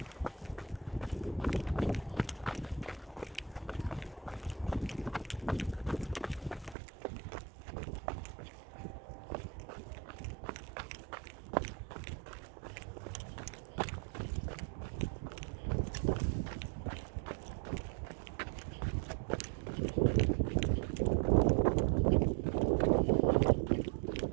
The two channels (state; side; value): drops out; left; at 6.8 s